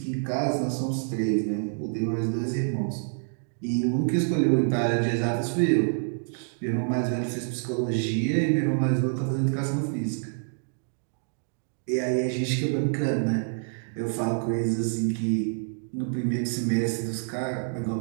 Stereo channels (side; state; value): left; silent; digital silence